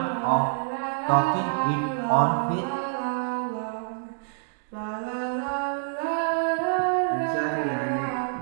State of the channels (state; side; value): silent; left; 60 dB below the other